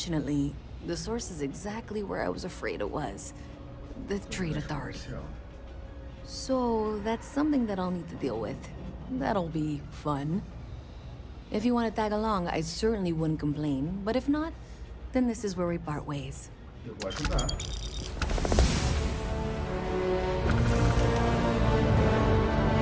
the source is exactly where I was afraid it was. The Trade Authority. So that's something that I'll need to deal with. That'll be fun. If you want to tag along, I certainly wouldn't complain. But if not, then this is where we part ways. Eu vou ajudar.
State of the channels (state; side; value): identical; both; correlation 1.00